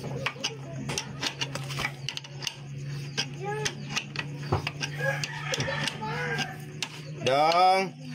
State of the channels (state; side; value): identical; both; correlation 1.00